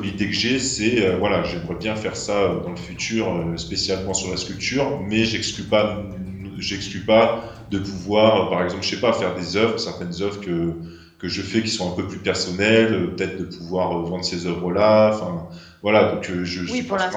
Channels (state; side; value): identical; both; correlation 1.00